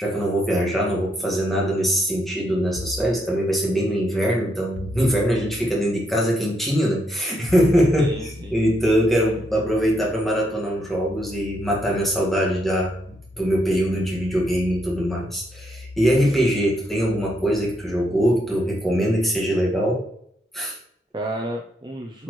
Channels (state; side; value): normal; both; correlation 0.77